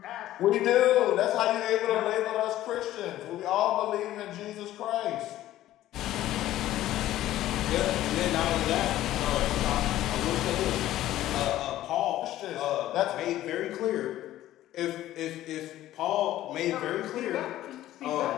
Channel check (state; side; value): quieter; right; 14.1 dB